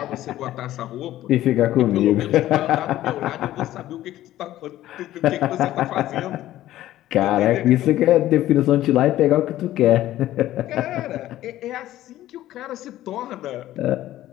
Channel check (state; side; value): quieter; right; 14.2 dB